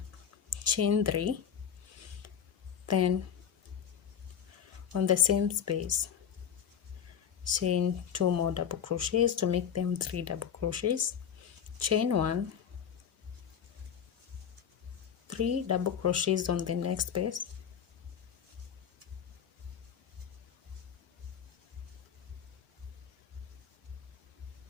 chain 3, then on the same space, chain 2 more double crochets to make them 3 double crochets, chain 1, 3 double crochets on the next space,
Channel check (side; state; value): right; quieter; 8.3 dB